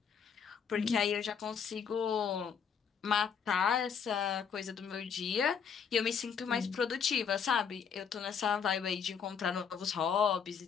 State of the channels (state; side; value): quieter; right; 7.0 dB